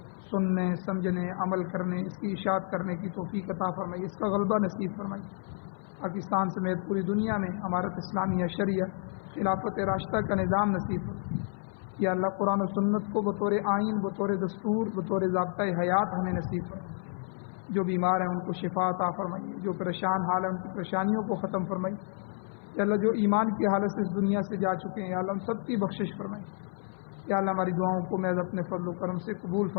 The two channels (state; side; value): silent; right; 58 dB below the other